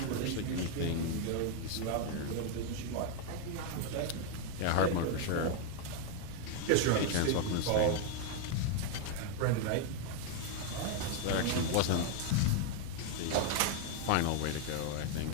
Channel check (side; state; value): both; different; correlation 0.00